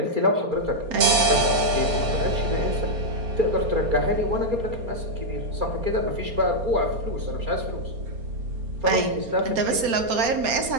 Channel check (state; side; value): late; left; 4.3 ms